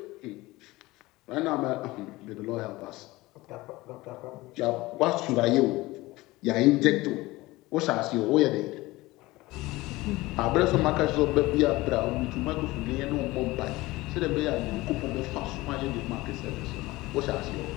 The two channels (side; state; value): right; quieter; 19.9 dB